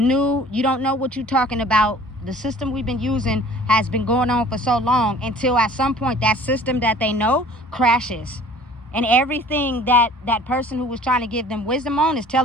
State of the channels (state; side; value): normal; both; correlation 0.49